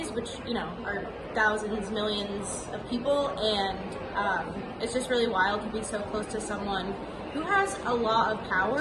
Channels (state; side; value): identical; both; correlation 1.00